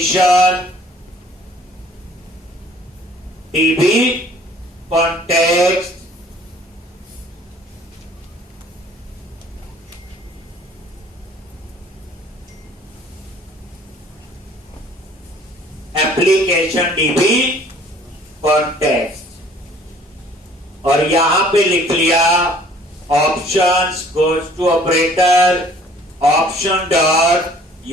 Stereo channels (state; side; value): normal; both; correlation 0.55